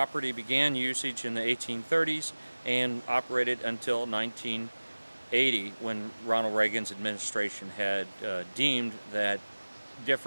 began usage in the 1830s and operated until 1980, when Ronald Reagan's administration had deemed that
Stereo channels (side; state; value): both; inverted; correlation -1.00